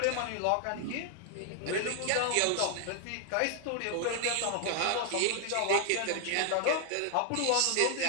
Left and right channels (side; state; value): both; different; correlation 0.00